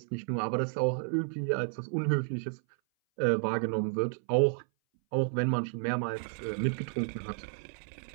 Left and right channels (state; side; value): silent; left; 57 dB below the other